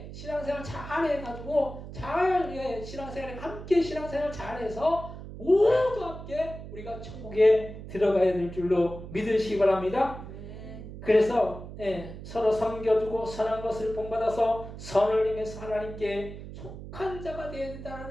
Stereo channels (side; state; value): right; noise; hum, 12 dB below the sound